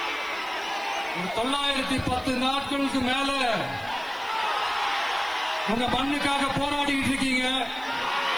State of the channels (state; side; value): noise; right; hiss, 25 dB below the sound